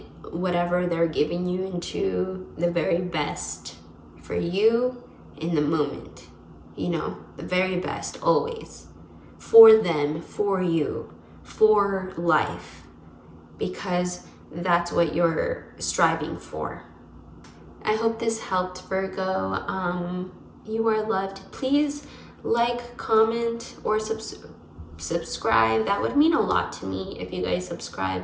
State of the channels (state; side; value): identical; both; correlation 1.00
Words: whatever they're giving you into the very best for you in the moment. You know, the very best always. For them, for you, for life. Because that's what you're striving for. I hope this helped, Virgo. You are loved. Please like, comment, or subscribe. That would mean a lot to me if you guys